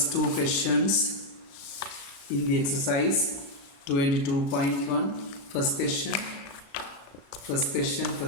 two questions in the exercise 22.1. First question,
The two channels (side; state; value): right; late; 36 ms